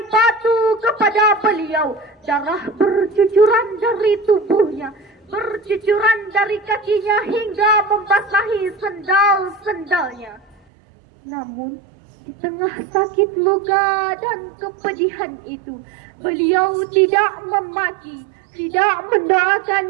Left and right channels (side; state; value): left; drops out; at 10.6 s